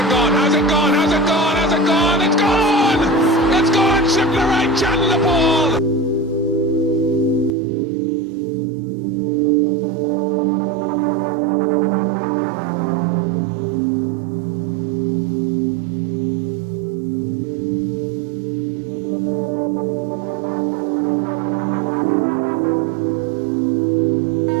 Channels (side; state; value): left; drops out; at 7.5 s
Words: gone? Has it gone? Has it gone? Has it gone? It's gone! It's gone! Shipler right, channel the ball!